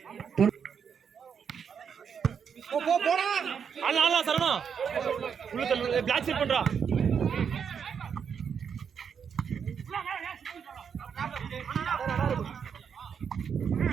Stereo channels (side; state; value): left; quieter; 7.1 dB